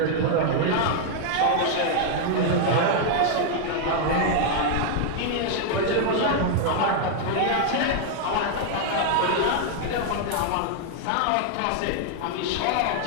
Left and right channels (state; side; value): different; both; correlation 0.00